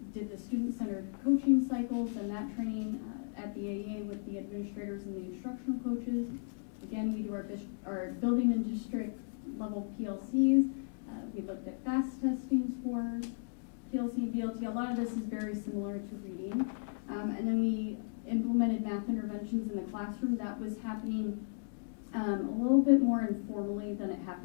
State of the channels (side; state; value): right; silent; digital silence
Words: did the student-centered coaching cycles and that training at the AA with the administrators and the instructional coaches. Again, we do our building and district level PLCs. We looked at FAST testing scores, PLC and BLT. A lot of this is very similar to reading. And then we implemented math interventions in the classroom. That was happening a little bit more informally than it